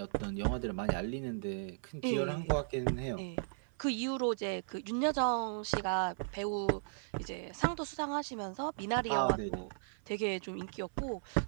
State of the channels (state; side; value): silent; left; 54 dB below the other